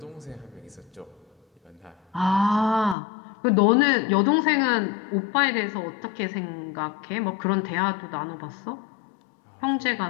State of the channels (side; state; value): right; drops out; at 3.0 s